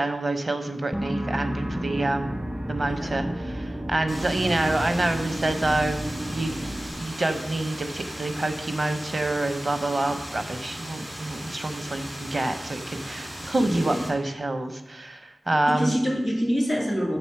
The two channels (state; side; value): normal; both; correlation 0.96